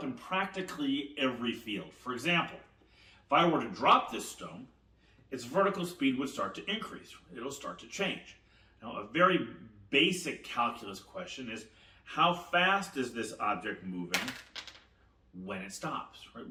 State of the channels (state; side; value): identical; both; correlation 1.00